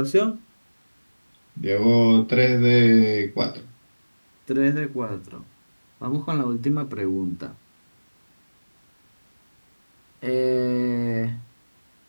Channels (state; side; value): inverted; both; correlation -1.00